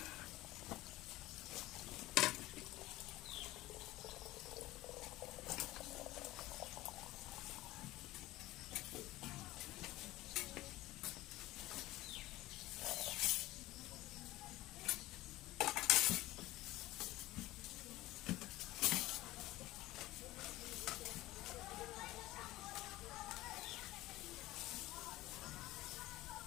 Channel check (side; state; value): right; quieter; 17.6 dB